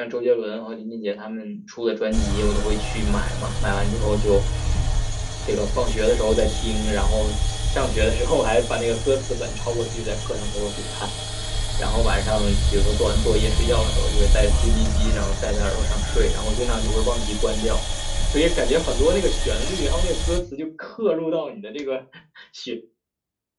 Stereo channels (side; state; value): both; identical; correlation 1.00